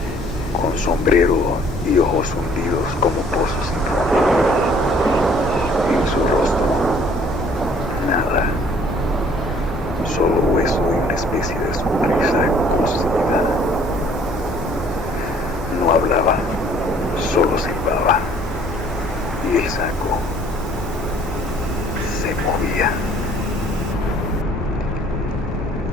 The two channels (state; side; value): normal; both; correlation 0.58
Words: con sombrero y ojos hundidos como pozos sin fondo. En su rostro, nada, solo hueso y una especie de sonrisa cosida. No hablaba, solo silbaba, y el saco se movía.